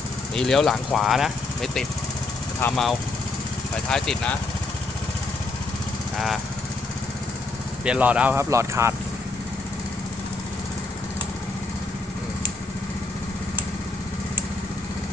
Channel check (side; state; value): right; quieter; 3.4 dB